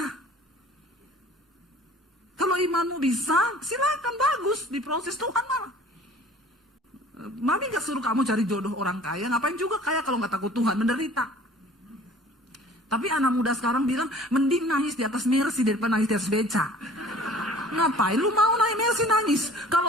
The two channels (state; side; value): normal; both; correlation 0.48